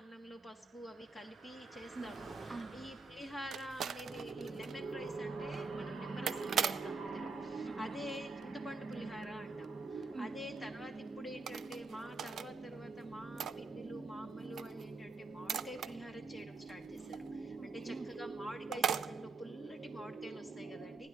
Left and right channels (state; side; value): quieter; left; 4.2 dB